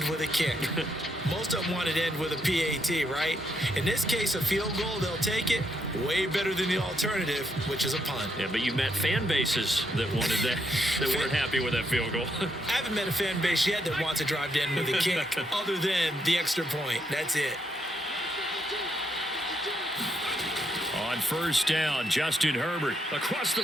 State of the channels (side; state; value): both; normal; correlation 0.77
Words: with a kick. Most of them wanted to end with a PAT, right? In this case, a field goal, they'll take it. Way better than the alternative, which is a punt. Yeah, but you met fan bases that wanted that, that weren't happy with that field goal. I haven't met a fan base yet that wants to drive to end with a kick, other than the extra point. That's it. On 1st down, Justin Herbert. Across the